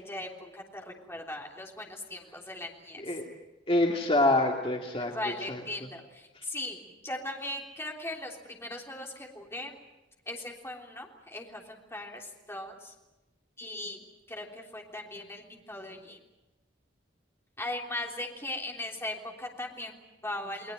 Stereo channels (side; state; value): both; normal; correlation 0.37